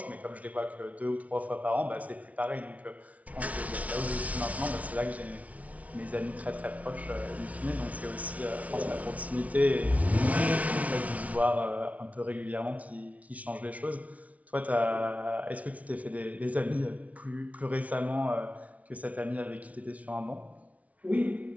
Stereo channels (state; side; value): late; left; 0.068 ms